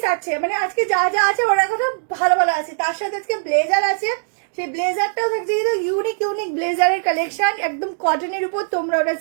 আছে, মানে আজকে যা যা আছে ওরা কথা ভালো ভালো আছে। তার সাথে আজকে ব্লেজার আছে, সেই ব্লেজারটাও থাকছে, কিন্তু ইউনিক ইউনিক ব্লেজারের কালেকশন, একদম কটনের উপর। তোমরা ওটা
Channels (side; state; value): left; silent; digital silence